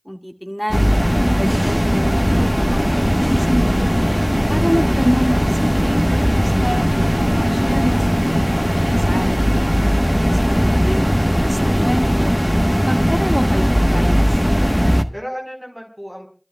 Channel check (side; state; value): both; identical; correlation 1.00